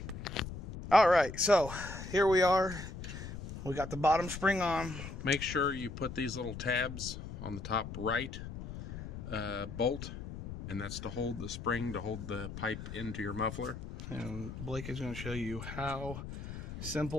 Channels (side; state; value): left; noise; rumble, 9 dB below the sound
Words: All right, so here we are. We got the bottom spring on. Make sure you put these little tabs on the top right bolt, and that's to hold the spring, to hold the pipe into your muffler. And Blake is going to show you how